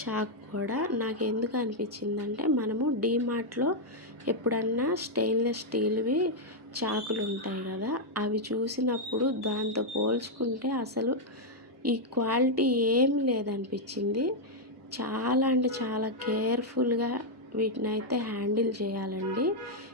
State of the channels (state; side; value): normal; both; correlation -0.03